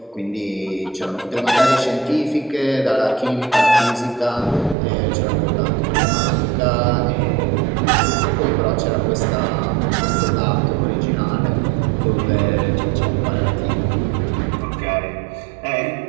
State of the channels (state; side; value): drops out; left; at 4.8 s